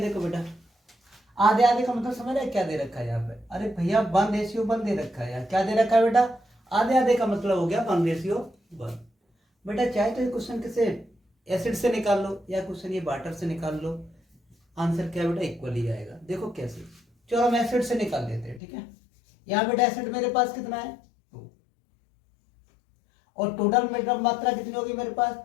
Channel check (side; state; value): right; drops out; at 18.6 s